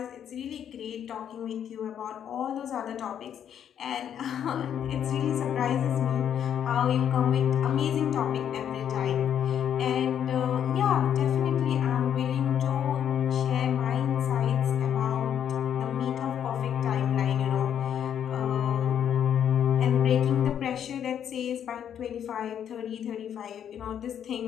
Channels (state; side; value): quieter; right; 9.2 dB